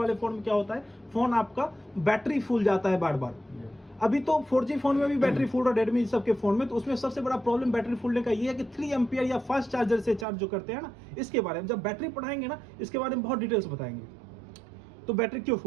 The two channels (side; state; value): left; drops out; at 10.2 s